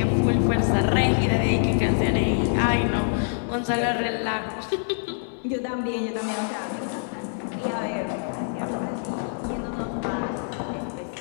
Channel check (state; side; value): silent; right; digital silence